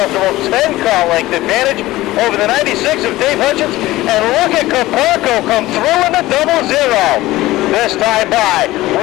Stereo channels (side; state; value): right; quieter; 17.4 dB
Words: 10-car length advantage over the 96 of Dave Hutchins. And look at Caparco come through in the 00. This time by.